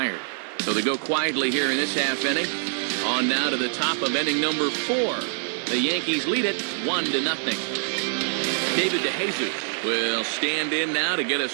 So they go quietly here in this half inning. On now to the top of inning number 4. The Yankees lead it 1-0. David DeJesus will stand in now to get us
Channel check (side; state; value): left; silent; digital silence